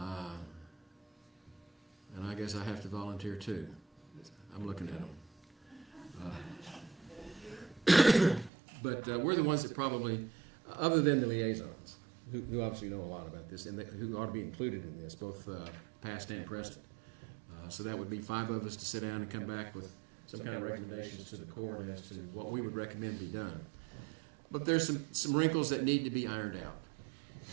I guess I have to volunteer too. I'm looking at them. But we're the ones that probably, other than the liaisons, who obviously know a lot about this, and who ought to be included in this, both past and present. So that would be 5 of us to sit down and come back with some kind of recommendations to the court as to what we would recommend be done. But there's some wrinkles that need to be ironed out.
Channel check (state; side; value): drops out; left; at 8.5 s